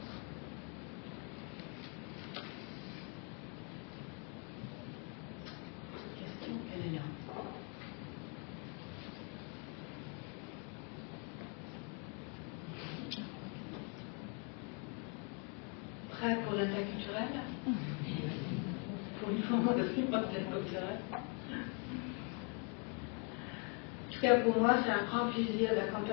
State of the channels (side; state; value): right; quieter; 37.1 dB